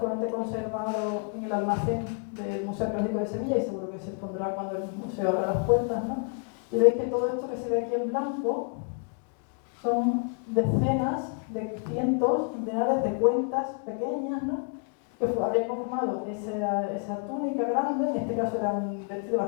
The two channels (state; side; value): quieter; right; 38.7 dB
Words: conservado en el almacén del Museo Arqueológico de Sevilla y seguro que se expondrá cuando el museo abra las puertas, ¿no? Y veis que todo esto que se ve aquí en blanco son decenas de cientos, centenares de cuentas pequeñas, ¿no? Que habrían conformado esa túnica grande, en este caso era un vestido